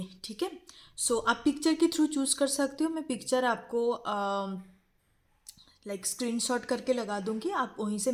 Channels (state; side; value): identical; both; correlation 1.00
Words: ठीक है, सो आप पिक्चर के थ्रू चूज कर सकते हो। मैं पिक्चर आपको स्क्रीनशॉट करके लगा दूंगी, आप वहीं से